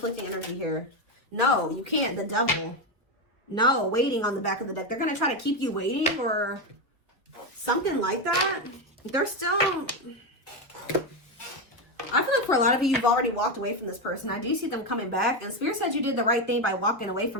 energy here. No, you can't. The Devil. No, waiting on the back of the deck. They're going to try to keep you waiting or something like that. They're still... I feel like for a lot of you, you've already walked away from this person. I do see them coming back. And Spirit said you did the right thing by walking away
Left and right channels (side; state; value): both; normal; correlation 0.10